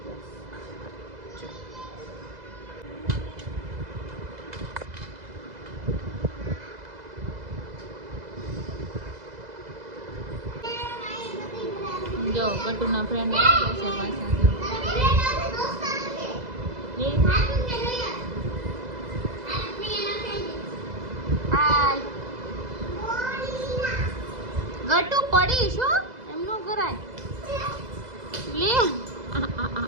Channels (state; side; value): late; left; 2.0 ms